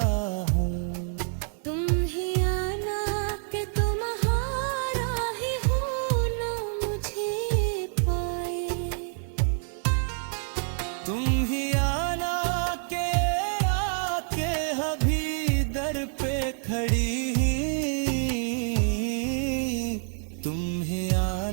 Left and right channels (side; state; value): left; silent; 56 dB below the other